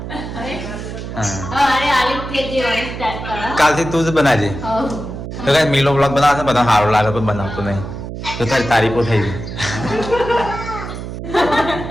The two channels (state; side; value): noise; right; hum, 8 dB below the sound